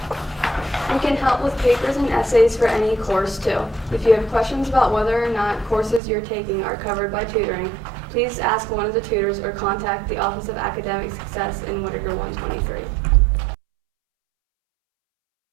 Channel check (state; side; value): drops out; left; at 6.0 s